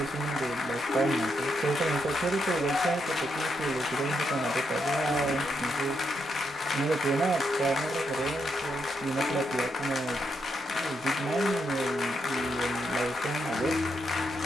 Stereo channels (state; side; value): normal; both; correlation 0.80